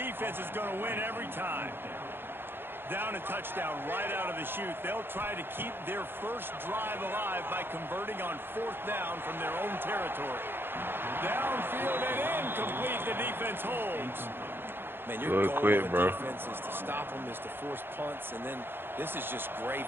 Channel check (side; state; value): left; late; 0.10 ms